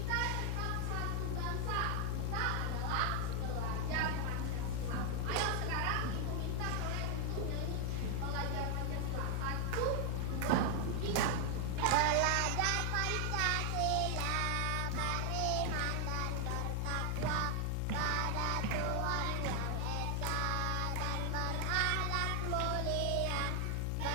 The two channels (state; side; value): different; both; correlation 0.00